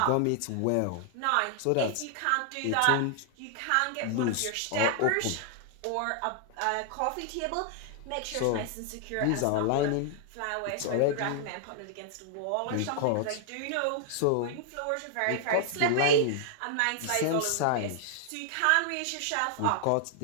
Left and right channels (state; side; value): different; both; correlation 0.00